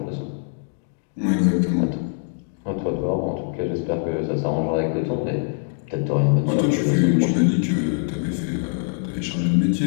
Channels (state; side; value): silent; right; 63 dB below the other